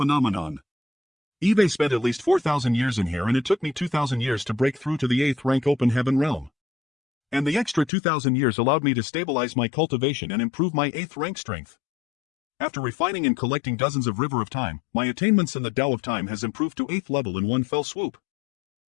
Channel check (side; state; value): right; drops out; at 7.9 s